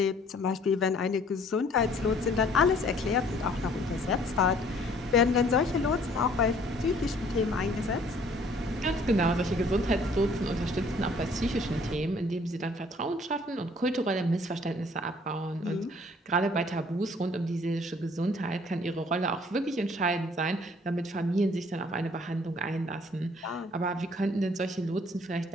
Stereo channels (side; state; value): both; normal; correlation 0.57